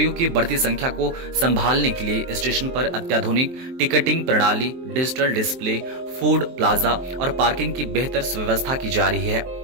की बढ़ती संख्या को संभालने के लिए स्टेशन पर अत्याधुनिक टिकटिंग प्रणाली, डिजिटल डिस्प्ले, फूड प्लाजा और पार्किंग की बेहतर व्यवस्था की जा रही है।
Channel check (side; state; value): left; late; 23 ms